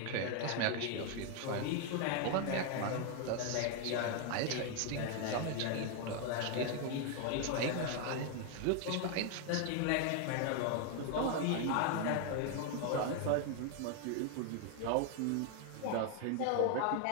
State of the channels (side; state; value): both; different; correlation 0.01